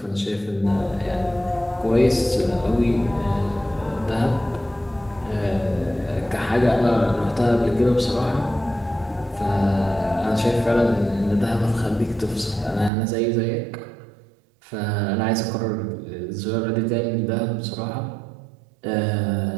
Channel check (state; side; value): drops out; left; at 12.9 s